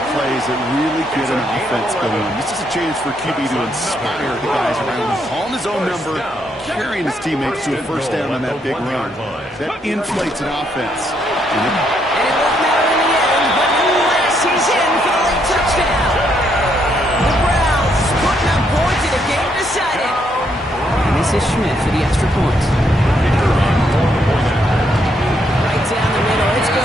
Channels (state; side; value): normal; both; correlation 0.74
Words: plays that really get an offense going. This is a chance for QB to inspire the guys around him. Calling his own number, carrying his teammates to a 1st down on that big run. That inflates an offense. And it won't matter in the end, but nonetheless, he's in for the late touchdown. The Browns putting up points in a game decided. And this is Schmidt for the extra point. Right down the middle, it's good.